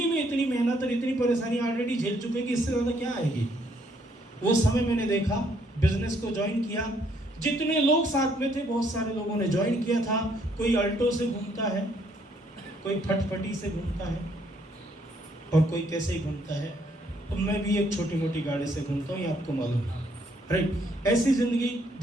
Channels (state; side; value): normal; both; correlation 0.69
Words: में इतनी मेहनत और इतनी परेशानी ऑलरेडी झेल चुके कि इससे ज्यादा क्या आएगी। वो समय मैंने देखा, बिजनेस को ज्वाइन किया। जितने लोग साथ में थे बहुत सारे लोगों ने ज्वाइन किया था। कोई अल्टो से घूमता है, कोई फटफटी से घूमता है, और कोई कैसे ही घूमता है। तो मैं भी एक छोटी मोटी गाड़ी से घूमता हूँ, ये आपको मालूम है, राइट। ऐसी ज़िंदगी